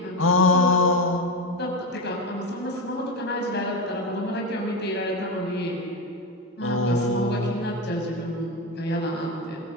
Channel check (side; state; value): both; normal; correlation 0.16